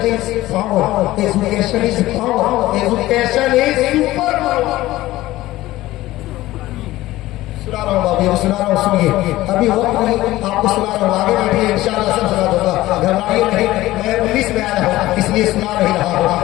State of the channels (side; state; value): right; quieter; 16.7 dB